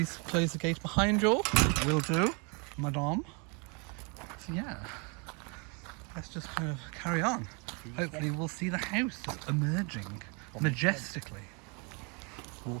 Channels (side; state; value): left; quieter; 33.3 dB